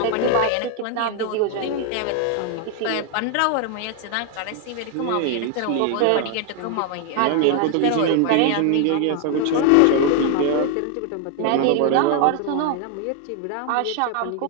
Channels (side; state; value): both; different; correlation 0.00